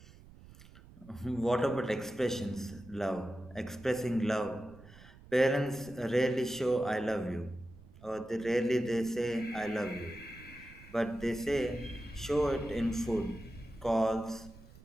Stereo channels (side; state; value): right; noise; rumble, 20 dB below the sound